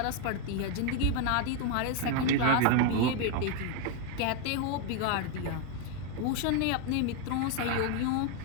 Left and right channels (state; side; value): different; both; correlation 0.01